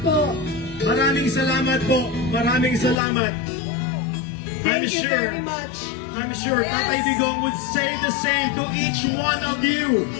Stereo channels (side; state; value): right; drops out; at 3.0 s